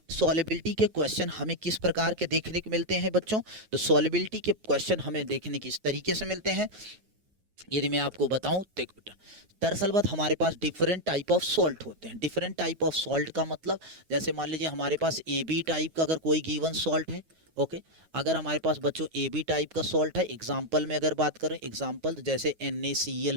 सॉल्युबिलिटी के क्वेश्चन हमें किस प्रकार के देखने को मिलते हैं बच्चों? तो सॉल्युबिलिटी के क्वेश्चन हमें देखने किस तरीके से मिलते हैं, यदि मैं आपको बताऊं, देख बेटा, दरअसल बात हमारे पास डिफरेंट टाइप ऑफ सॉल्ट होते हैं। डिफरेंट टाइप ऑफ सॉल्ट का मतलब, जैसे मान लीजिए हमारे पास AB टाइप का अगर कोई गिवन सॉल्ट है। ओके, अगर हमारे पास बच्चों AB टाइप का सॉल्ट है, एग्जांपल में अगर बात करें, एग्जांपल जैसे NaCl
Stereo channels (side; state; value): left; late; 9.3 ms